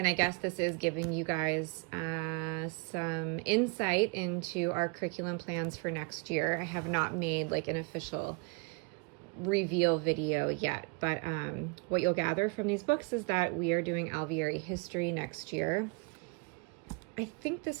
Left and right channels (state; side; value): quieter; left; 31.6 dB